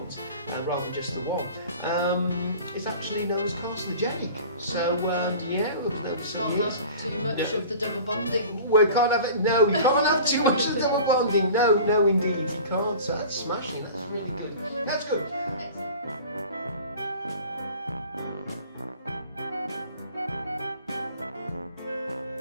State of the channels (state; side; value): inverted; both; correlation -0.41